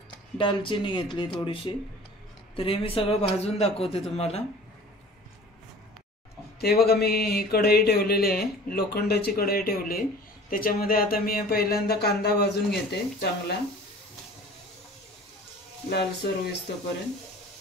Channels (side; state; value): both; normal; correlation 0.45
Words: दालचिनी घेतली थोडीशी। तर हे मी सगळं भाजून दाखवते तुम्हाला। ते बघा मी कढई ठेवलेली आहे, लोखंडाची कढई ठेवली। त्याच्यामध्ये आता मी पहिल्यांदा कांदा भाजून घेते, चांगला लालसर होईस्तोपर्यंत